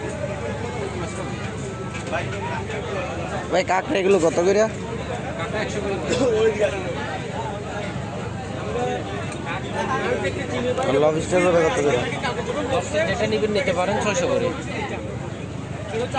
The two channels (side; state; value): both; identical; correlation 1.00